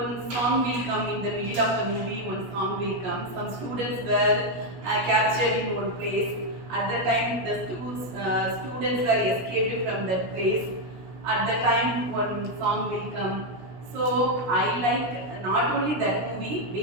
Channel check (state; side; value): late; left; 16 ms